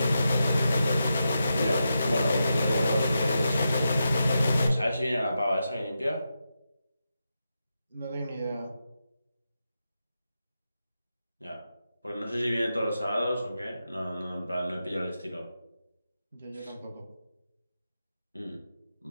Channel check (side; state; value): both; inverted; correlation -0.88